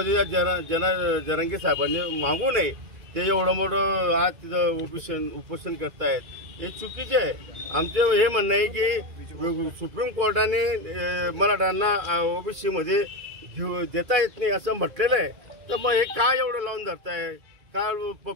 जरांगे साहेबांनी मागू नये, ते एवढं मोठं आज तिथं उपोषण करतायत, हे चुकीचे आहे। आमचं हे म्हणणं आहे की सुप्रीम कोर्टाने मराठ्यांना ओबीसी मध्ये देता येत नाही असं म्हटलेलं आहे, तर मग हे काय एवढं लावून धरताय? का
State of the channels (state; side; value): late; left; 2.3 ms